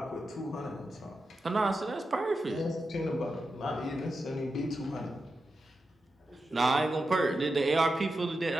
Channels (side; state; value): both; normal; correlation 0.89